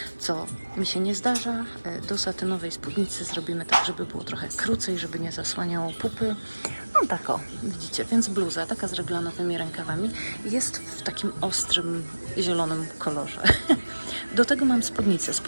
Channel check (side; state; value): both; inverted; correlation -1.00